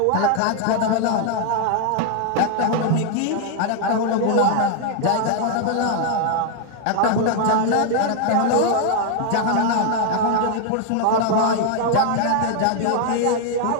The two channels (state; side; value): different; both; correlation 0.00